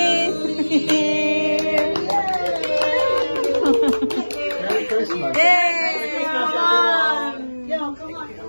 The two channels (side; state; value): both; inverted; correlation -1.00